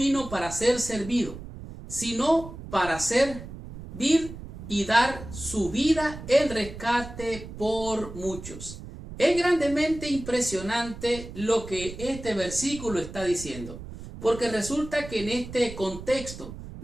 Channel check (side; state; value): right; noise; rumble, 12 dB below the sound